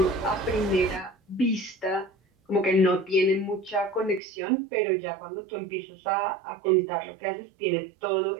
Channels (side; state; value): left; drops out; at 4.2 s